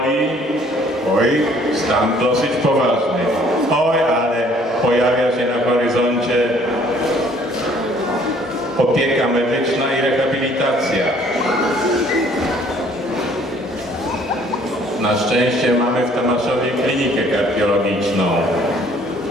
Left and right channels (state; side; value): normal; both; correlation 0.59